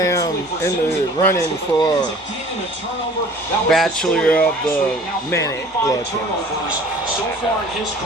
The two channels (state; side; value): normal; both; correlation 0.48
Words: in the running for Bachelor of the Minute. So far in his